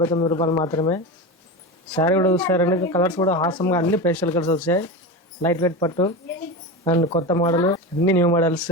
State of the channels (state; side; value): normal; both; correlation 0.23